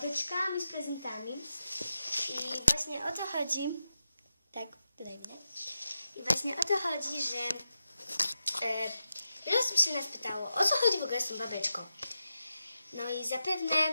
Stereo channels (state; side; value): inverted; both; correlation -0.90